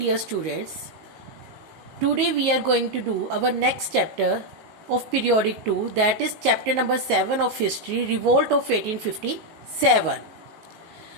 students. Today we are going to do our next chapter of periodic 2, that is chapter number 7 of history, Revolt of 1857.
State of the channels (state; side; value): late; left; 19 ms